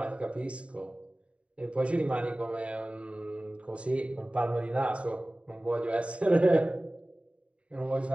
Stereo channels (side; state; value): left; late; 0.061 ms